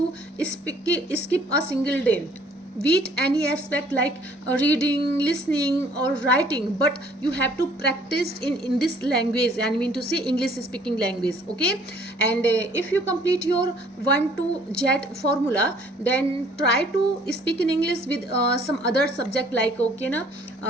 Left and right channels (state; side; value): normal; both; correlation 0.58